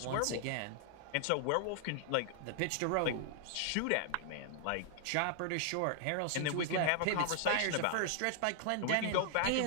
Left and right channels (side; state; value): both; different; correlation 0.00